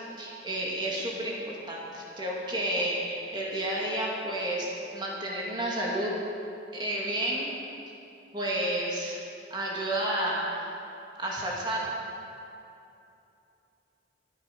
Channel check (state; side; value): normal; both; correlation 0.08